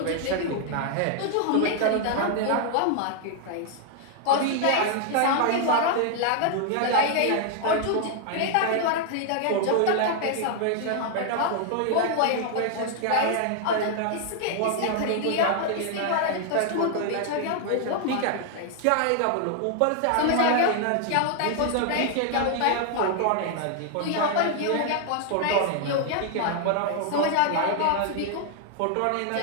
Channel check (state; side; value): different; both; correlation 0.00